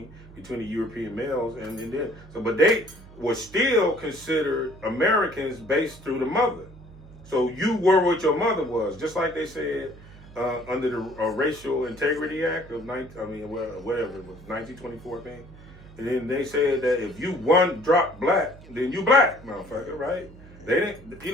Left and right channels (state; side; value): noise; right; hum, 20 dB below the sound